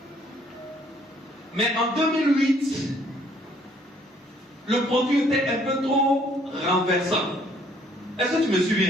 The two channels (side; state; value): both; normal; correlation 0.63